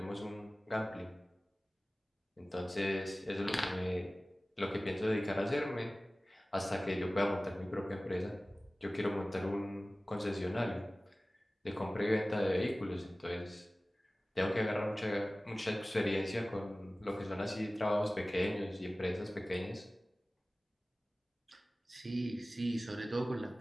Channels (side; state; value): both; normal; correlation 0.97